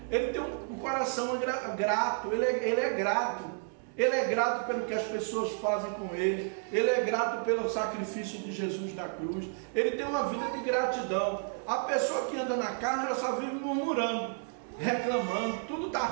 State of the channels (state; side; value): silent; left; 57 dB below the other